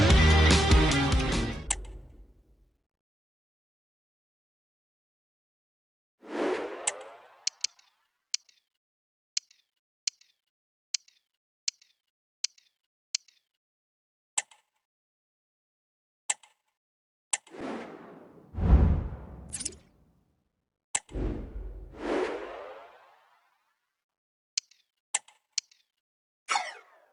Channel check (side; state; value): both; normal; correlation 0.90